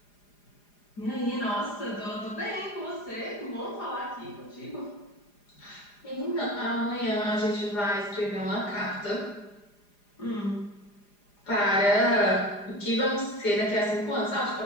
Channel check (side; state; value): right; late; 4.9 ms